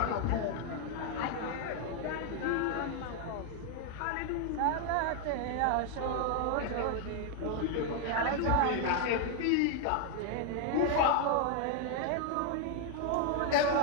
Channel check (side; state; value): both; different; correlation 0.00